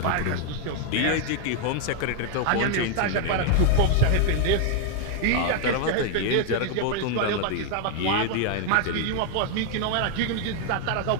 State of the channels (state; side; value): different; both; correlation 0.00